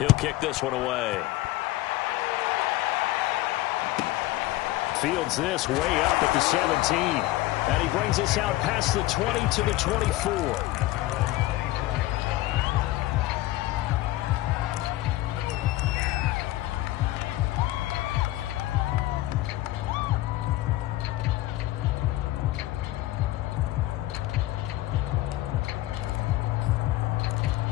kick this one away. Fields this way up at the 17. And he brings us out past the 20 to the 24.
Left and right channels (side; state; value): right; quieter; 17.0 dB